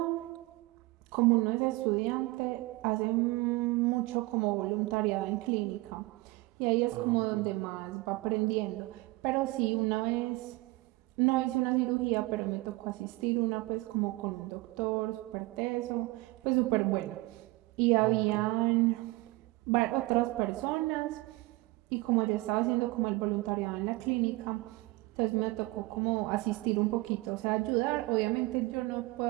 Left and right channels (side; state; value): left; quieter; 21.6 dB